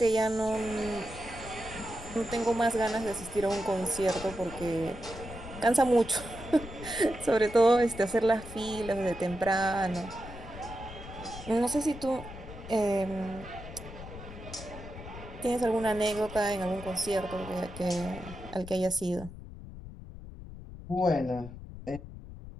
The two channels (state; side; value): noise; left; rumble, 13 dB below the sound